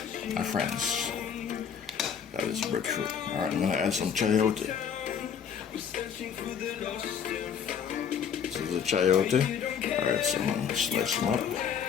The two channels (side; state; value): right; quieter; 7.5 dB